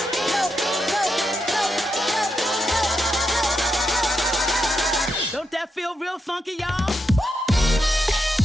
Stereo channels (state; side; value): normal; both; correlation 0.84